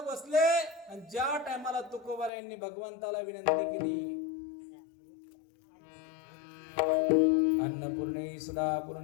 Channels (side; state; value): right; drops out; at 2.3 s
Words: बसले. आणि ज्या टायमाला तुकोबारायांनी भगवंताला विनंती केली, अन्नपूर्णे